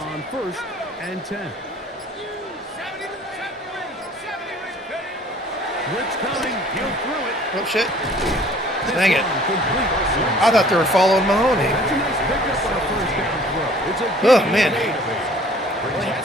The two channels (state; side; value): normal; both; correlation 0.53